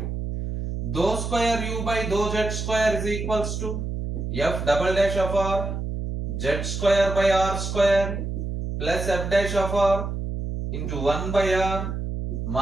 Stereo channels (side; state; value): right; noise; hum, 4 dB below the sound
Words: Dou square u by dou z square is equals to f double dash of r z square by r square plus f dash of r into 1 by r